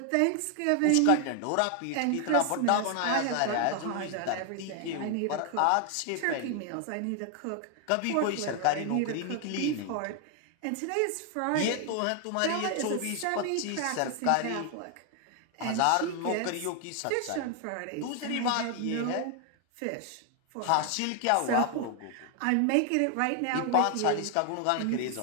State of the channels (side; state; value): both; different; correlation 0.00